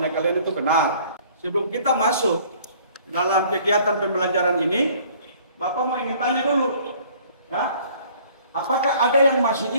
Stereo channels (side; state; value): both; inverted; correlation -0.55